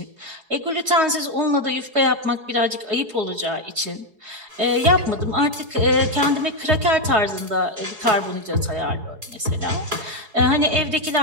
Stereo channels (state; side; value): late; left; 4.7 ms